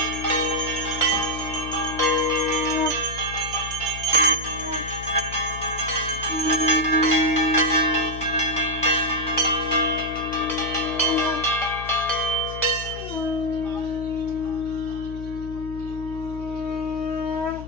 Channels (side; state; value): left; noise; hum, 11 dB below the sound